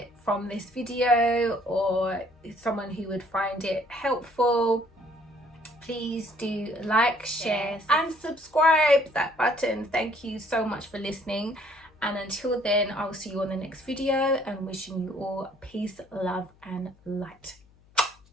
from this video, or someone who would find it helpful, please do like, share and subscribe. That button. Thank you so much for listening. And until then, I'll see you on the next video, and wishing you all peace, love and light.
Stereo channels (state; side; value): noise; left; hum, 30 dB below the sound